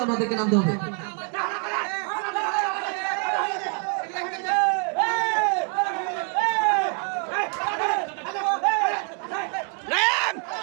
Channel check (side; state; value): left; quieter; 37.2 dB